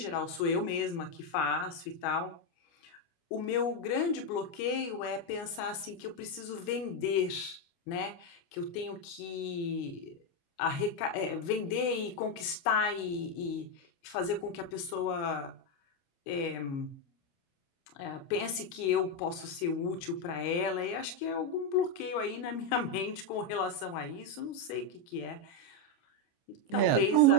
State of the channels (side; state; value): right; late; 29 ms